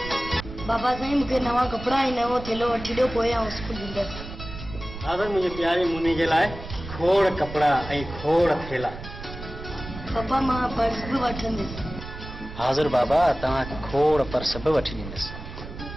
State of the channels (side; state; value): right; noise; rumble, 11 dB below the sound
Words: बाबा साईं, मूंखे मूंखे नवां कपिड़ा ऐं नवो थेलो वठी ॾियो पोइ आउं स्कूल वेंदसि। दादा मुंहिंजे प्यारे मुनी जे लाइ खोड़ कपिड़ा ऐं खोड़ थेला। पप्पा मां पर्स बि वठंदसि। हाज़िर बाबा, तव्हां खोड़ पर्स बि वठी ॾींदसि।